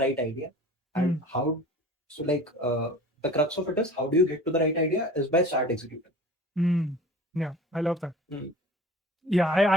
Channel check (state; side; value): normal; both; correlation 0.41